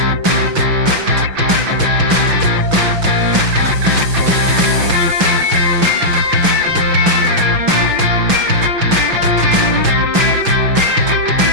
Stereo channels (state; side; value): late; left; 6.0 ms